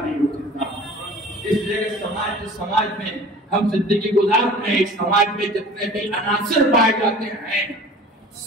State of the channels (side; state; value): both; normal; correlation 0.43